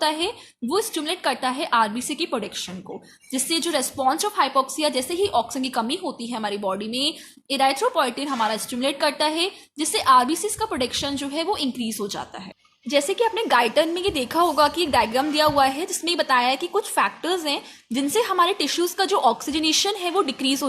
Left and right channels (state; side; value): identical; both; correlation 1.00